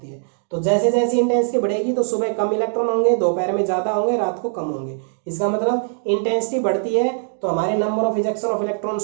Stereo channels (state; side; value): silent; left; digital silence